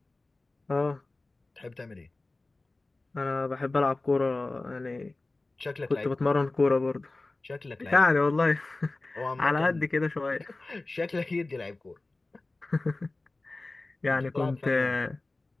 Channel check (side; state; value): right; quieter; 3.1 dB